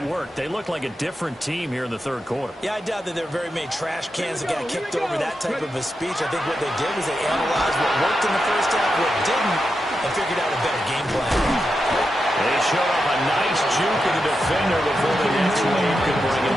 worked. They looked like a different team here in the 3rd quarter. Yeah, I doubt that there were very many trash cans that got kicked over that type of a speech. I think what they did was they analyzed what worked in the first half, what didn't, and figured out a better game plan. They showed up a nice juke of the defender before the next wave could bring him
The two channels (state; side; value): normal; both; correlation 0.88